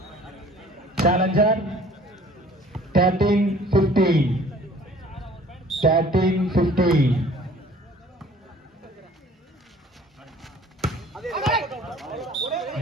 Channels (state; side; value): normal; both; correlation 0.52